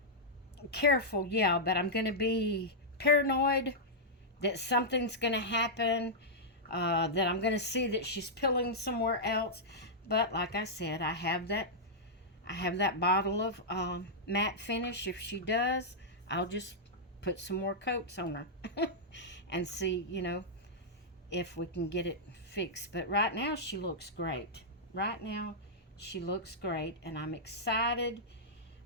Careful, yeah, but I'm going to be paranoid that something's going to happen. That I'm going to see that she's pilling somewhere else. But like I said, I have that bottle of matte finish. If she does, I'll just put some more coats on her and see, if we can get it fixed. But right now she looks great. Right now she looks great, and I'm excited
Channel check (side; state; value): both; normal; correlation -0.09